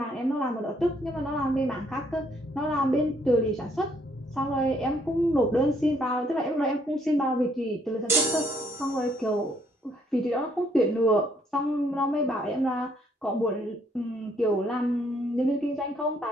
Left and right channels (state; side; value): normal; both; correlation 0.68